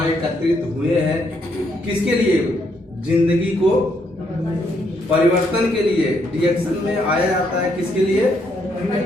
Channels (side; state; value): both; normal; correlation 0.74